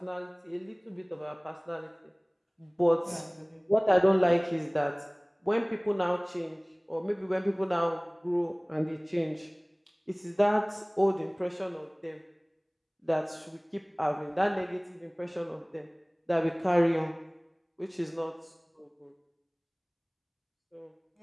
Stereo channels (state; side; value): identical; both; correlation 1.00